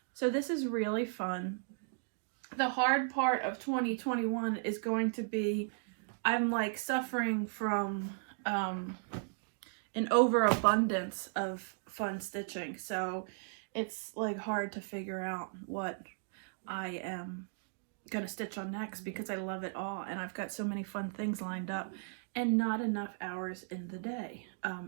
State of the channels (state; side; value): silent; left; digital silence